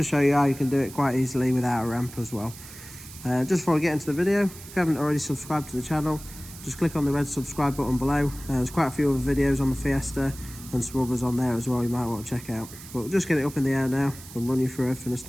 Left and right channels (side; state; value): right; noise; hiss, 16 dB below the sound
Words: show you how you can do it quite easily without a ramp as well. Just before I get into the video, if you haven't already subscribed to the channel, just click on the red subscribe button below. There's quite a few other videos on the Fiesta and some others on there as well you might want to check out. But we'll just get it up in the air now and run you through everything a